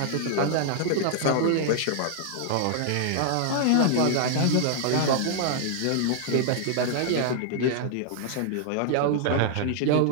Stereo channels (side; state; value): both; different; correlation 0.00